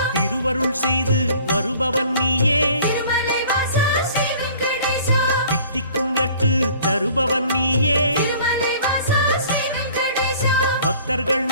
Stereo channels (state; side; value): inverted; both; correlation -0.51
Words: திருவருள் செய்து வருபவன் நீயே திருமலை வாசா ஸ்ரீ வெங்கடேசா தித்திக்கும் லட்டு தருபவன் நீயே திருமலை வாசா ஸ்ரீ வெங்கடேசா பக்தர்கள்